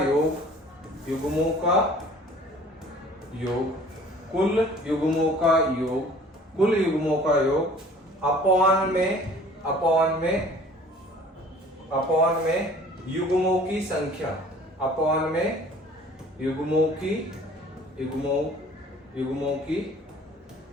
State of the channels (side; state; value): both; normal; correlation 0.50